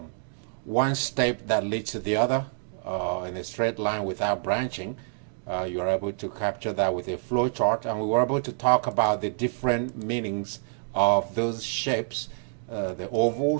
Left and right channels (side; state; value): left; silent; digital silence